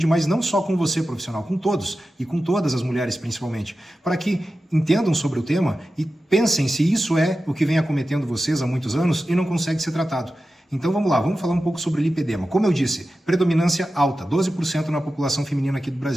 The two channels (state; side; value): normal; both; correlation 0.93